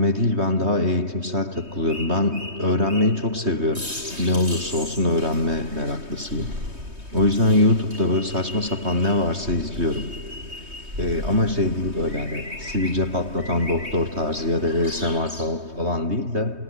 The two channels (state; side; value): late; left; 3.2 ms